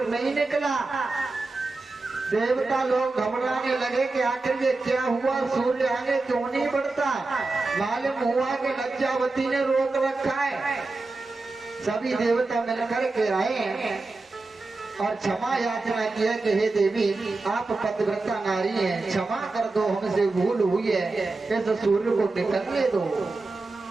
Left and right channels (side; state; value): left; quieter; 3.5 dB